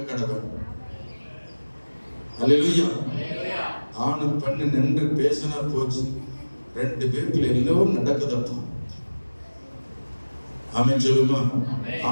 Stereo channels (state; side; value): inverted; both; correlation -1.00